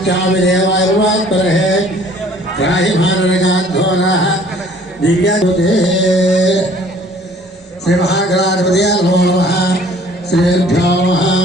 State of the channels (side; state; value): both; normal; correlation 0.55